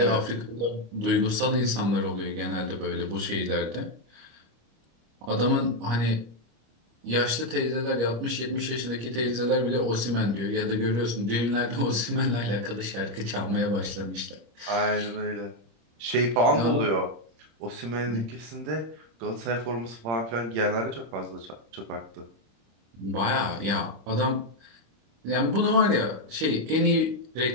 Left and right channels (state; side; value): late; left; 25 ms